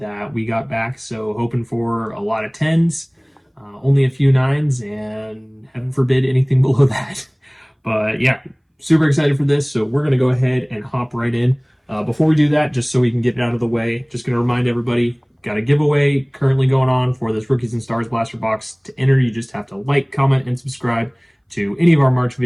we got back, so hoping for a lot of 10s, only a few 9s, and heaven forbid anything below that. But yeah, super excited for this, so we're gonna go ahead and hop right in. Before we do that, just so we can get it out of the way, just gonna remind everybody, got a giveaway currently going on for this Rookies and Stars Blaster Box. To enter, you just have to like, comment, and subscribe to any of our March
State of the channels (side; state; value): both; identical; correlation 1.00